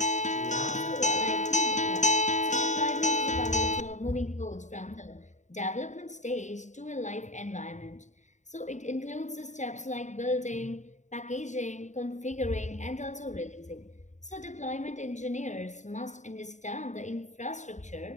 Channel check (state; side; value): late; right; 0.34 ms